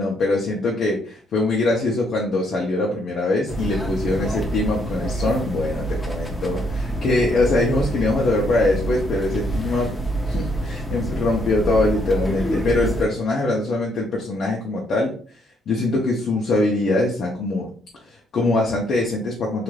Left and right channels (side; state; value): both; normal; correlation 0.72